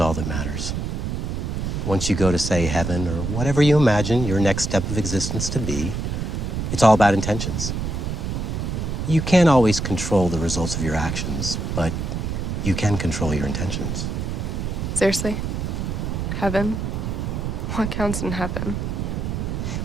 that matters. Once you go to, say, heaven or whatever you imagine your next step of existence to be, it's all about intentions. You can't always control the results of your actions, but you can control your intentions. Seriously? Heaven? What counts in heaven?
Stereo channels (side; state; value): right; noise; rumble, 3 dB below the sound